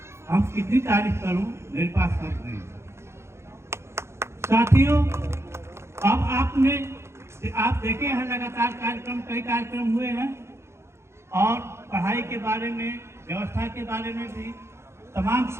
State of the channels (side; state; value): left; late; 0.13 ms